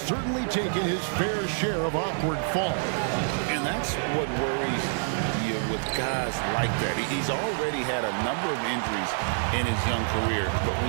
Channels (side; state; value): left; silent; 60 dB below the other